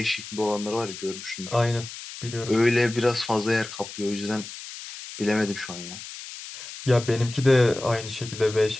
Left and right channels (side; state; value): left; noise; hiss, 12 dB below the sound